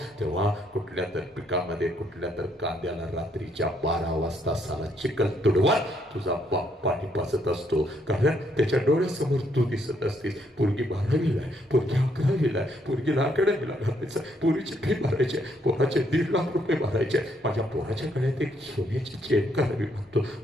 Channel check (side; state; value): both; normal; correlation 0.72